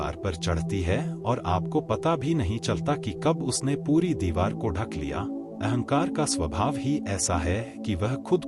पर चढ़ती है और आपको पता भी नहीं चलता कि कब उसने पूरी दीवार को ढक लिया। अहंकार का स्वभाव ही ऐसा है कि वह खुद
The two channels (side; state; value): both; identical; correlation 1.00